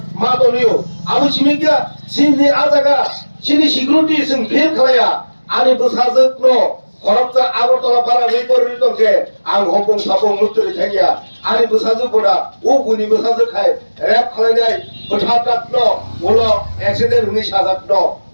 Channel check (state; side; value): inverted; both; correlation -1.00